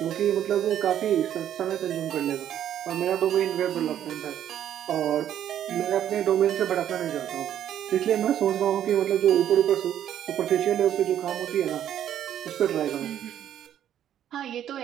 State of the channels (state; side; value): quieter; left; 10.6 dB